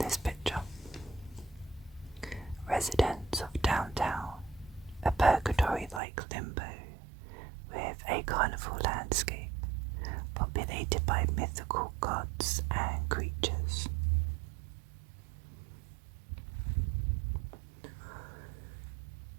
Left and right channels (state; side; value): drops out; left; at 6.0 s